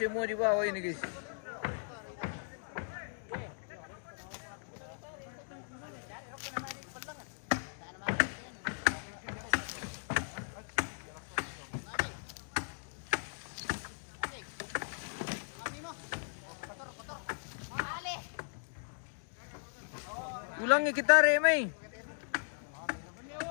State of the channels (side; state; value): right; silent; digital silence